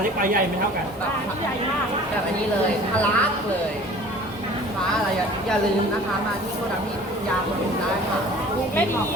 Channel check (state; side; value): normal; both; correlation 0.46